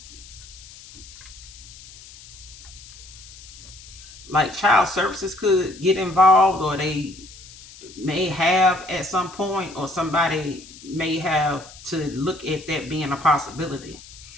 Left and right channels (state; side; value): noise; left; hiss, 19 dB below the sound